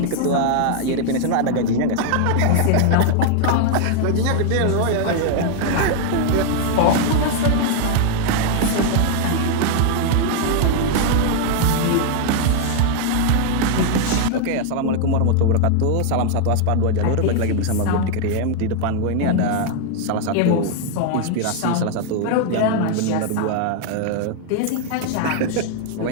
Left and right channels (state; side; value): different; both; correlation 0.00